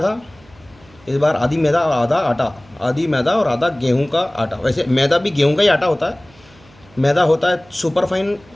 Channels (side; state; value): right; noise; hum, 27 dB below the sound